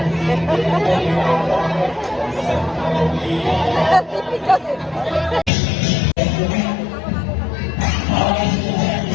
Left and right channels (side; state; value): right; drops out; at 5.5 s